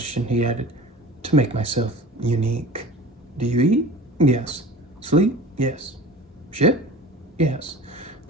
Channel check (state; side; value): normal; both; correlation 0.40